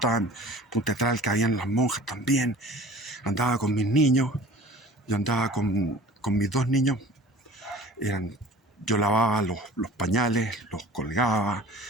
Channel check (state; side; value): normal; both; correlation 0.44